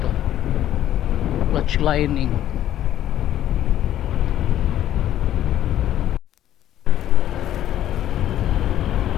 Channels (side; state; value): right; quieter; 12.1 dB